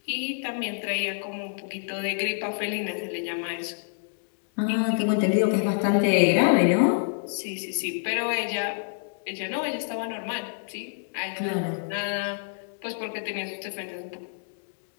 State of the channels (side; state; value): right; silent; digital silence